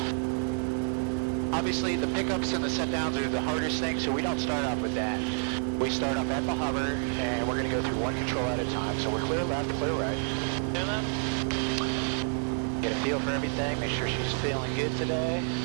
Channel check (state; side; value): silent; left; 59 dB below the other